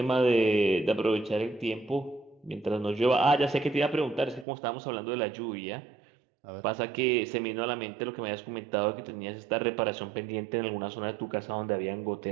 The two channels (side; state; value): left; drops out; at 4.5 s